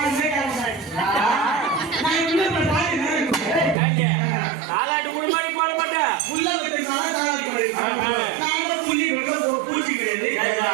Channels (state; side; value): drops out; left; at 3.8 s